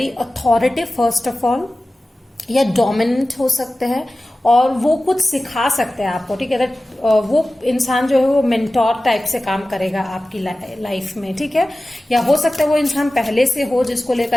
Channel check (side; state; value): both; normal; correlation 0.96